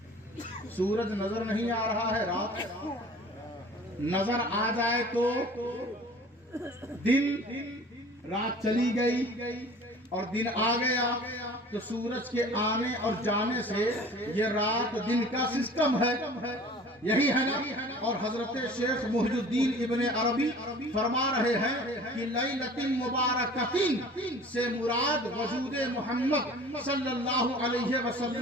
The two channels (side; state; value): both; normal; correlation 0.45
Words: سورج نظر نہیں آ رہا ہے, رات نظر آ جائے تو دن, رات چلی گئی اور دن آ گیا تو سورج کے آنے اور جانے سے یہ رات دن کا سسٹم ہے, یہی ہے نا. اور حضرت شیخ محی الدین ابن عربی فرما رہے ہیں کہ لیلۃ مبارکۃ سے مراد وجود محمد صلی اللہ علیہ